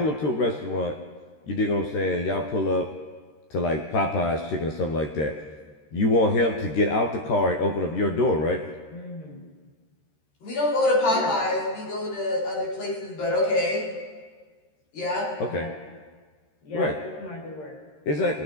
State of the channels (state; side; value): late; right; 13 ms